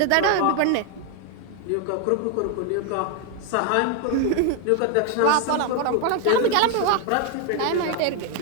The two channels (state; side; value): different; both; correlation 0.01